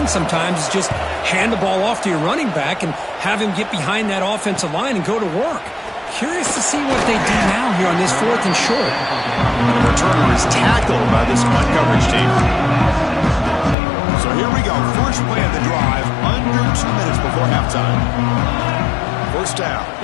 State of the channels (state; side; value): drops out; right; at 13.8 s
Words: sometimes is just hand the ball off to your running back and have him get behind that offensive line and go to work. Curious to see what they do now here on this 4th and short. The returner is tackled by this punt coverage team. So here we go. First play of the drive under 2 minutes before halftime. First down.